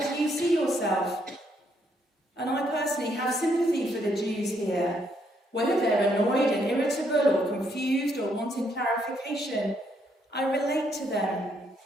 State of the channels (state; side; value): normal; both; correlation 0.73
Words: do you see yourself? And I personally have sympathy for the Jews here. Whether they're annoyed and irritable or confused or wanting clarification, I relate to them.